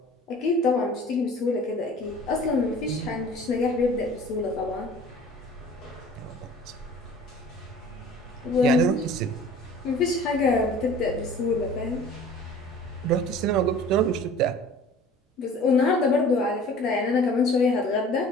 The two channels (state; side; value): normal; both; correlation 0.46